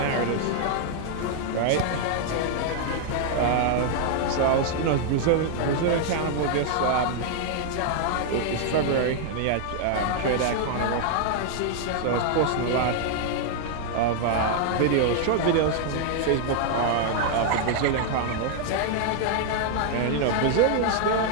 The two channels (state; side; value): different; both; correlation 0.00